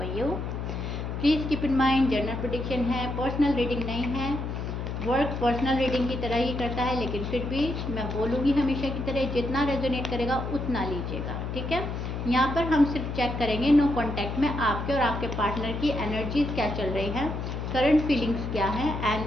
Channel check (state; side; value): noise; left; hum, 4 dB below the sound